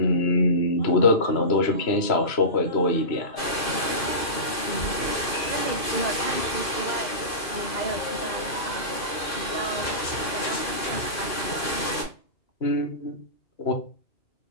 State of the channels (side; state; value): right; late; 2.5 ms